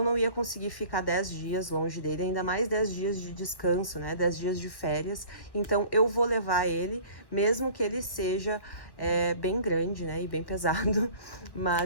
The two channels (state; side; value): late; right; 1.1 ms